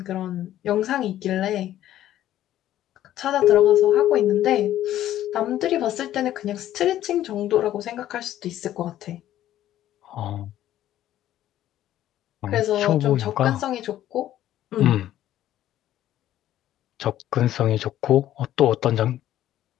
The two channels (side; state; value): right; quieter; 12.7 dB